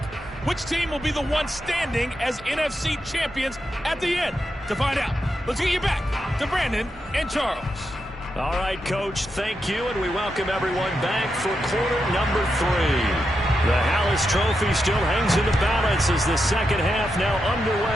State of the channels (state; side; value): normal; both; correlation 0.86